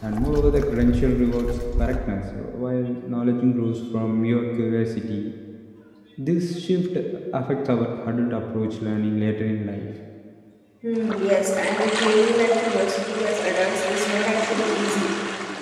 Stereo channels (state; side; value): identical; both; correlation 1.00